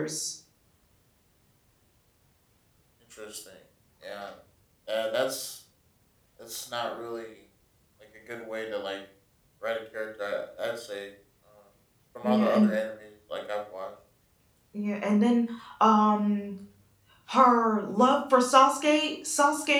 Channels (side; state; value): both; identical; correlation 1.00